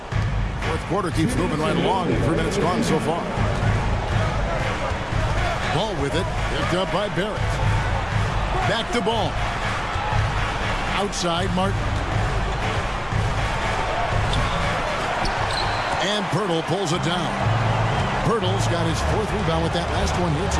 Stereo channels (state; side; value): identical; both; correlation 1.00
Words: Fourth quarter keeps moving right along. 3 minutes gone so far. Ball with it. Picked up by Barrett. Back to Ball. Outside, Martin. And Pirtle pulls it down. Pirtle's got his 4th rebound with that last one here